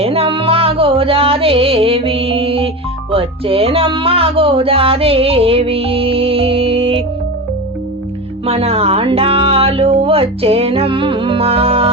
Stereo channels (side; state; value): both; normal; correlation 0.24